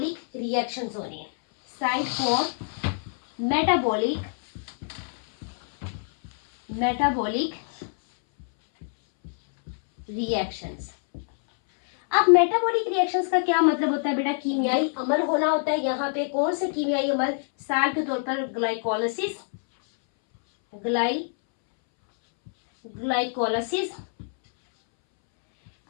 रिएक्शंस हो रही हैं, साइट फॉर मेटाबॉलिक रिएक्शंस। अब मेटाबॉलिक रिएक्शंस का क्या मतलब होता है बेटा, कीमियाई अमल होना होता है। यहाँ पे कौन से कीमियाई अमल, साल के तौर पर ग्लाइकोलाइसिस, ग्लाइकोलाइसिस।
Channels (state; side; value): silent; right; 61 dB below the other